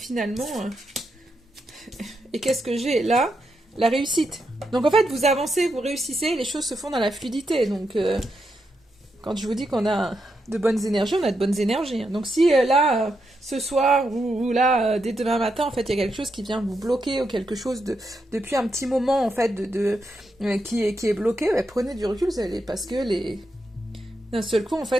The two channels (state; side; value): normal; both; correlation 0.83